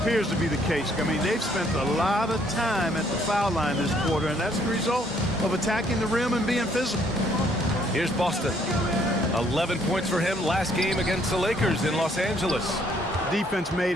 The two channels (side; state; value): both; normal; correlation 0.66